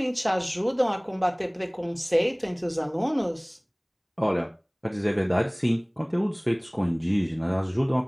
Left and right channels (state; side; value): identical; both; correlation 1.00